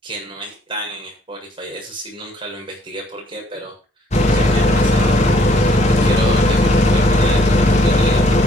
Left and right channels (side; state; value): both; normal; correlation 0.64